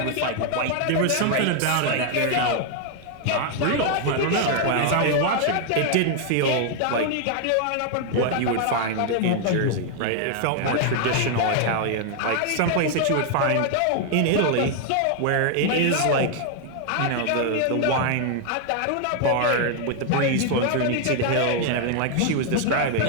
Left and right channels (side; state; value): both; different; correlation 0.00